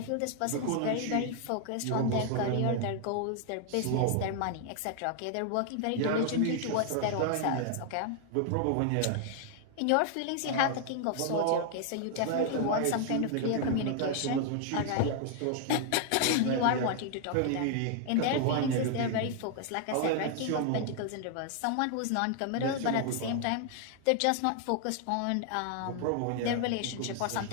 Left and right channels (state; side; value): different; both; correlation 0.00